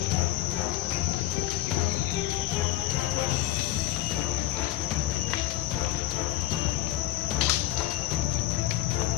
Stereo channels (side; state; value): right; quieter; 14.9 dB